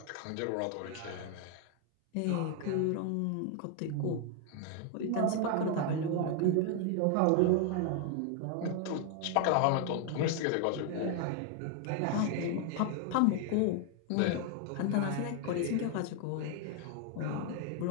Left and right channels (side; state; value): both; different; correlation 0.00